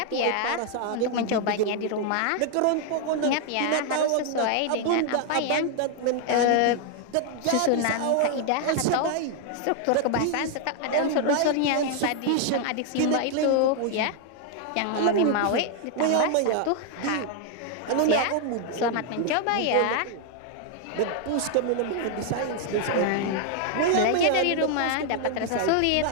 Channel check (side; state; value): both; different; correlation 0.00